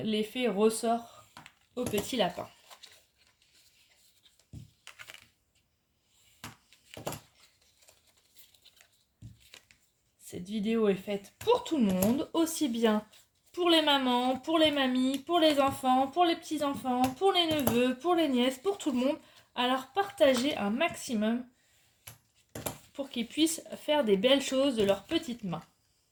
ressort au petit lapin. Cette vidéo est faite pour tout le monde, aussi bien pour les mamans, pour les mamies, pour les enfants, pour les petits-enfants, pour les neveux, pour les nièces, pour tout le monde. Alors partagez un maximum pour qu'ils puissent faire des belles choses de leurs petites mains.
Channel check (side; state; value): both; identical; correlation 1.00